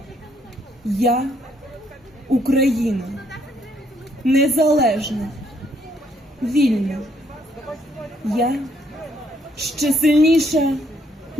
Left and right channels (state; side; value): normal; both; correlation 0.70